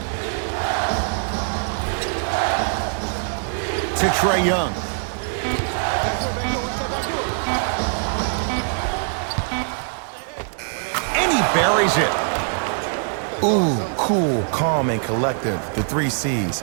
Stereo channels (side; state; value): left; silent; digital silence